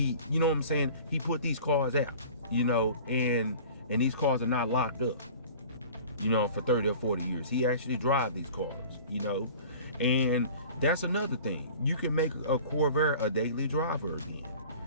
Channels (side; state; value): both; inverted; correlation -0.43